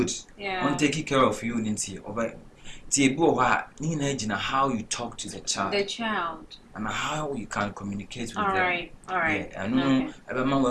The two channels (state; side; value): identical; both; correlation 1.00